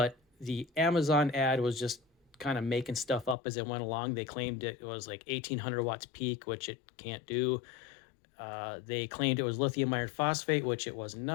the Amazon ad was just kind of making stuff up as it went along. They claimed it was like 1800 watts peak, which it can't do. They claimed it was lithium iron phosphate, which it was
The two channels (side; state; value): right; drops out; at 3.4 s